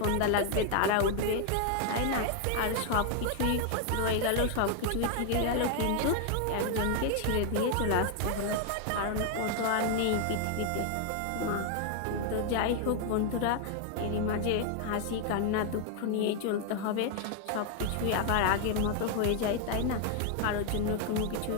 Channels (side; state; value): both; different; correlation 0.00